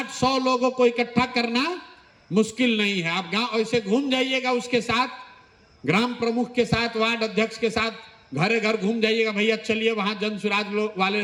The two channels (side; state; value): both; identical; correlation 1.00